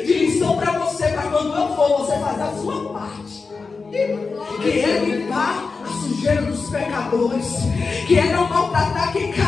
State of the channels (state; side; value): quieter; right; 4.5 dB